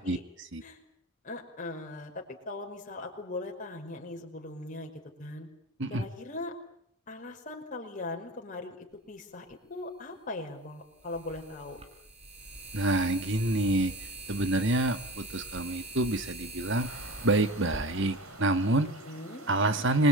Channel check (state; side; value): normal; both; correlation 0.34